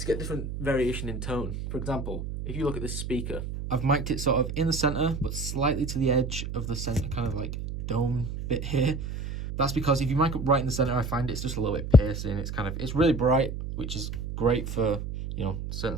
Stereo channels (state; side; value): noise; right; hum, 6 dB below the sound